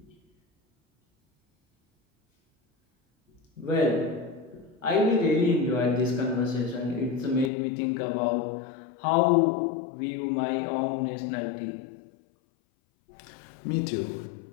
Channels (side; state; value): right; drops out; at 7.5 s